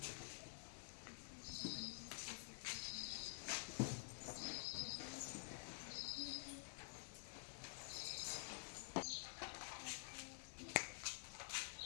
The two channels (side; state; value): right; silent; digital silence